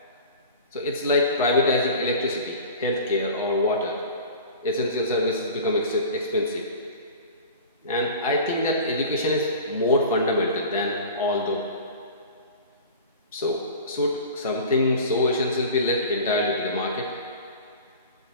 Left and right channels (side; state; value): both; inverted; correlation -0.37